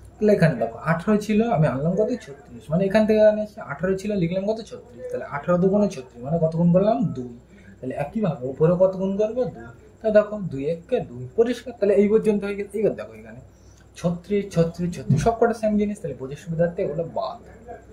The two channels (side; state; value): both; identical; correlation 1.00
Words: তাহলে এখানে দেখো 18 ছিল, আমি আনলাম কত 36, মানে এখান থেকে এখানে 18 ছিল, লিখলাম কত 36, তাহলে 18 দুগুণে 36, মানে কত গুণ করলাম 2, তাহলে একইভাবে উপরে কত গুণ করবো 2, তাহলে দেখো 2 1 2, পরিষ্কার। তাহলে এই পর্যন্ত হয়ে গেছে। এবার দেখো এখানে 36 36 36 সব কটা সেম জিনিস, তাহলে বোঝার সুবিধার্থে এগুলো বাদ।